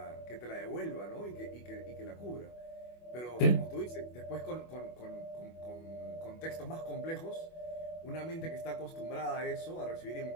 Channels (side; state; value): right; late; 25 ms